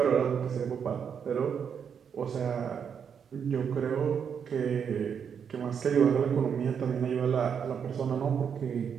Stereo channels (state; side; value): quieter; left; 7.3 dB